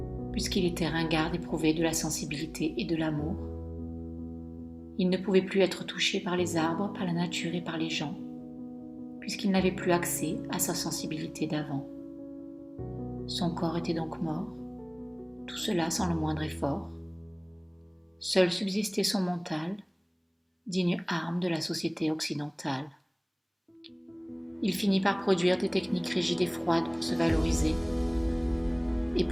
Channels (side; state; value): both; identical; correlation 1.00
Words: puisqu'il était ringard éprouvé de la sensibilité et de l'amour. Il ne pouvait plus être touché par les arbres, par la nature et par les gens, puisqu'il n'avait plus accès à sa sensibilité d'avant. Son corps était donc mort, tout cela sans le moindre effort. Seul subsistait son mental, digne arme de la société occidentale. Il finit par produire des techniques rigides et froides pour se valoriser et